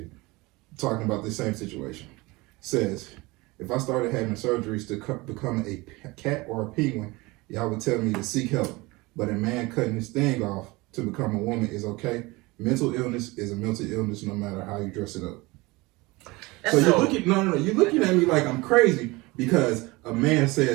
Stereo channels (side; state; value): left; quieter; 22.9 dB